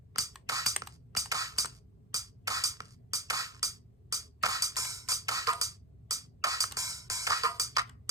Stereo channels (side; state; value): both; normal; correlation 0.18